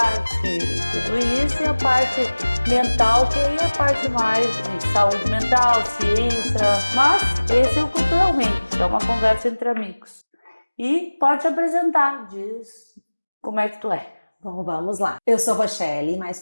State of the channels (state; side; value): inverted; both; correlation -1.00